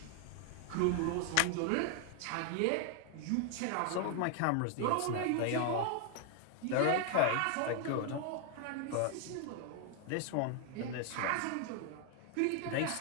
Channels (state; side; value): different; both; correlation 0.00